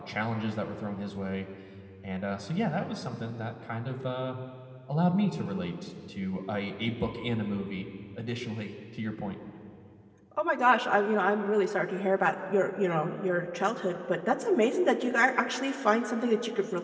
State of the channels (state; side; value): identical; both; correlation 1.00